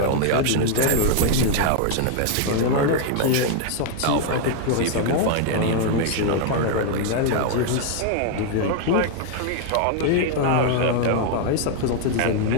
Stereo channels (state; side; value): different; both; correlation 0.00